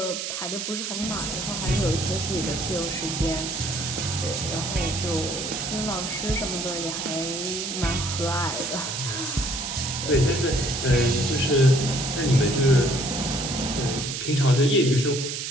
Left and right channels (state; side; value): noise; right; hiss, 4 dB below the sound